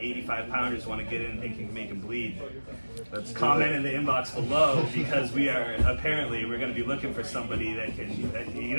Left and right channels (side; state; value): both; inverted; correlation -1.00